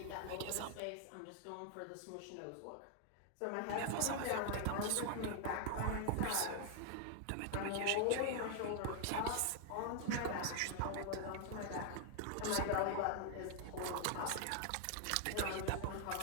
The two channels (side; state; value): both; different; correlation 0.00